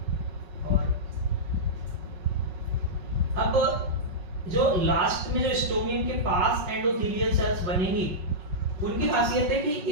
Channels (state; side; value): late; left; 5.4 ms